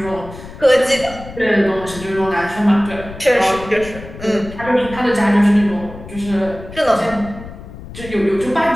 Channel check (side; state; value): left; noise; rumble, 14 dB below the sound